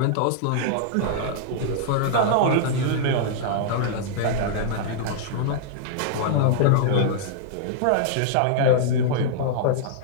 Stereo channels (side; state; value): both; different; correlation -0.02